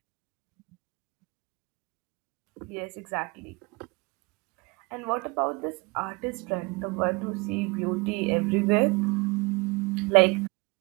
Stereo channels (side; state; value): left; quieter; 27.6 dB